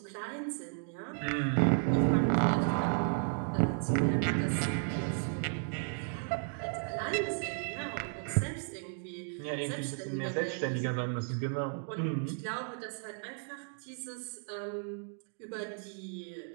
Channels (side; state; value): left; silent; 55 dB below the other